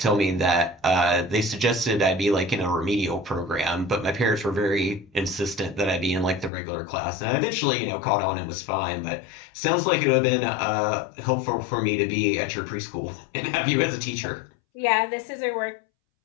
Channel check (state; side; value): drops out; right; at 6.5 s